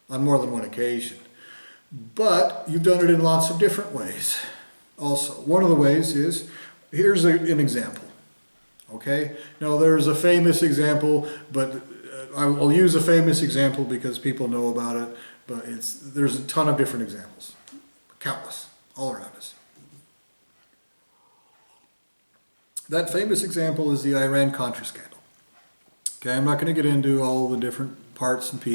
on more than one occasion. But you've done it in lots of different ways also. One of the ways is, here's an example, okay? Now there's a famous example, but I'll use a famous example because people know about it, but there's a ton of different examples, countless, all around us. That famous example is the Iran-Contra scandal. Okay, I'm not going to get into all the different parts and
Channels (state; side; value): inverted; both; correlation -1.00